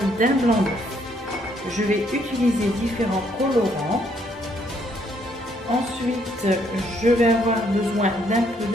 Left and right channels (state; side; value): normal; both; correlation 0.70